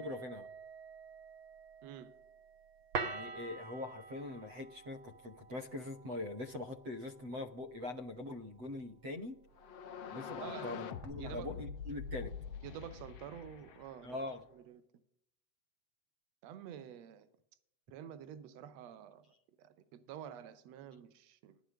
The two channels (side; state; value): left; late; 7.9 ms